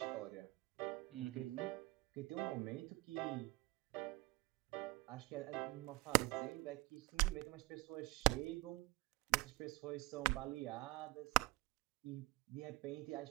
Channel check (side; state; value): left; quieter; 22.3 dB